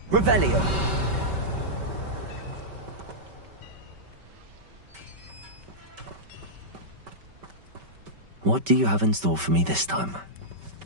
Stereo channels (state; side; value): late; left; 5.2 ms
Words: Revelio. What do you have in store for me this time?